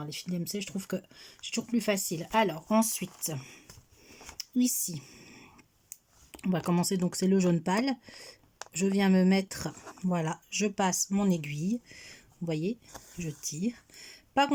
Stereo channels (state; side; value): identical; both; correlation 1.00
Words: Les fils DMC, je trouve que c'est toujours plus facile. Alors, ensuite, ici, on va commencer. Donc, c'est le jaune pâle. Je viens me mettre, voilà, je passe mon aiguille. Vous voyez, je tire. Pas